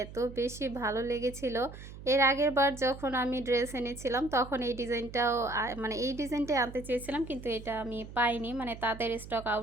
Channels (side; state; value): right; noise; hum, 14 dB below the sound